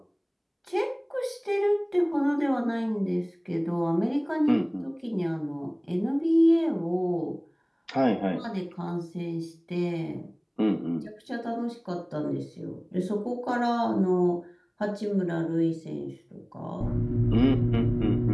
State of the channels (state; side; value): identical; both; correlation 1.00